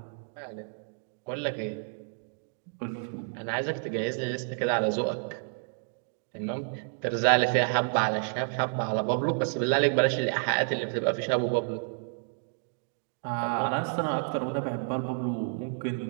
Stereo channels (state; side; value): silent; left; digital silence